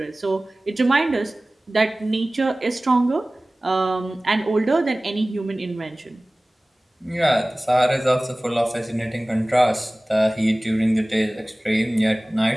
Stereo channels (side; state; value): both; normal; correlation 0.98